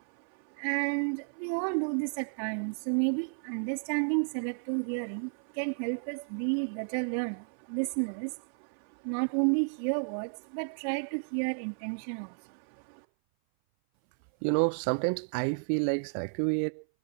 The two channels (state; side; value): silent; left; 56 dB below the other